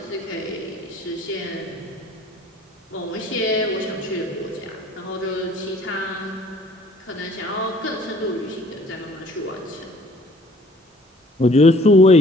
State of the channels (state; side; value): normal; both; correlation 0.55